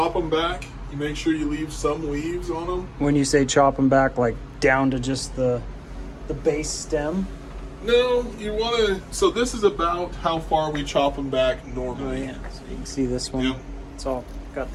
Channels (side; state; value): both; identical; correlation 1.00